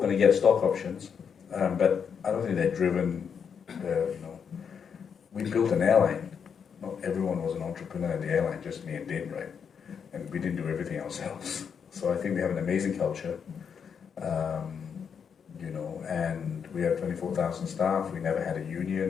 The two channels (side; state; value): right; quieter; 6.9 dB